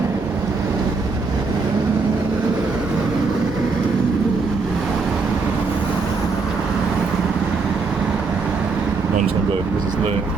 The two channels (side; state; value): left; quieter; 4.5 dB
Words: I'm just gonna go because there's no